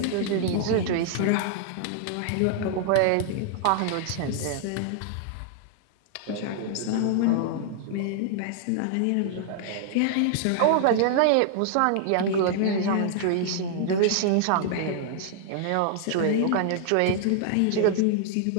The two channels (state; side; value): different; both; correlation -0.01